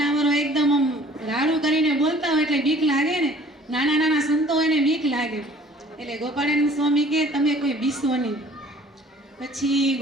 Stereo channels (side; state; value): both; normal; correlation 0.53